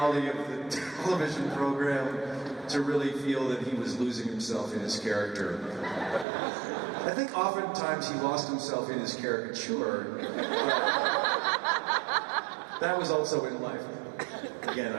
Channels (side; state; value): left; drops out; at 6.2 s